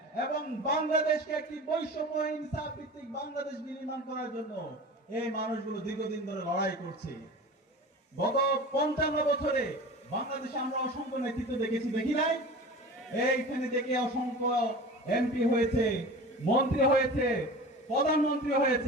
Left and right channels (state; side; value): normal; both; correlation 0.36